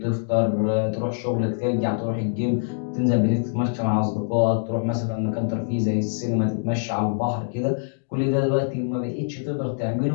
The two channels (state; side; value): silent; right; digital silence